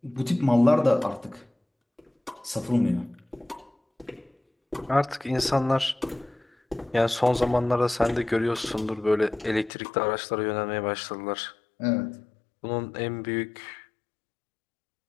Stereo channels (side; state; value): right; drops out; at 9.7 s